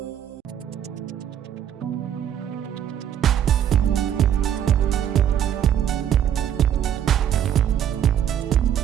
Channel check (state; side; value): quieter; left; 9.7 dB